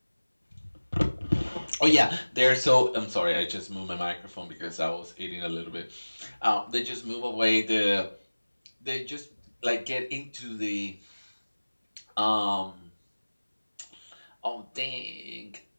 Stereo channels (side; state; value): both; inverted; correlation -1.00